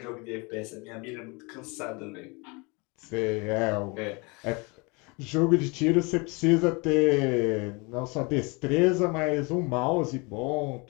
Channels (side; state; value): right; quieter; 29.1 dB